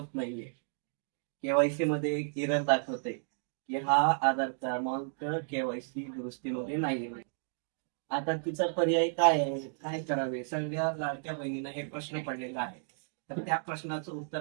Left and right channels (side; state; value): left; silent; digital silence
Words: नाहीये. केवायसी मध्ये एक एरर दाखवते की हा आधार क्रमांक केवायसी दुरुस्तीमध्ये नाहीये. आता तिचा पर्याय काय आहे, काय करावे, सगळ्या लाडक्या बहिणींना हे प्रश्न पडलेला आहे. तर त्या प्रश्नाचं